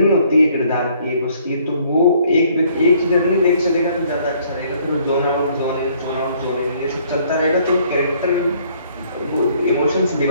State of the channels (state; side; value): inverted; both; correlation -0.63